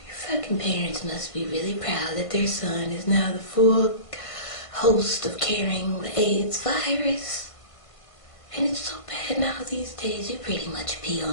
parents must be really proud that their son is now the full host of carrying the AIDS virus. And it's so bad now these days, you pretty much pee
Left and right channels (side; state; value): right; late; 1.5 ms